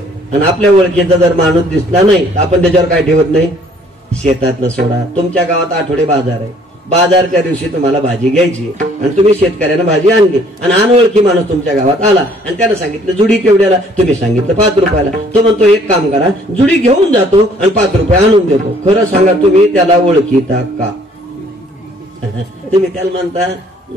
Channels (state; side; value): normal; both; correlation 0.60